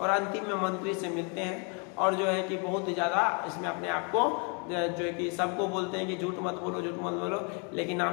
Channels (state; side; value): quieter; right; 36.6 dB